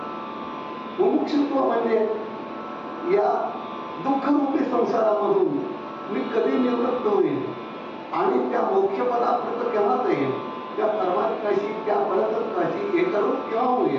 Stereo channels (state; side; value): identical; both; correlation 1.00